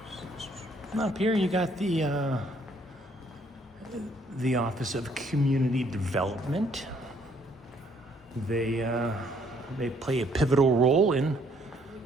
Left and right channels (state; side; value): normal; both; correlation 0.66